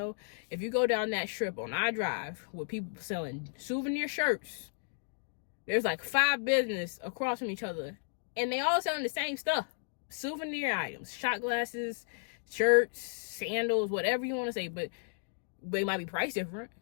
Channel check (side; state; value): right; silent; digital silence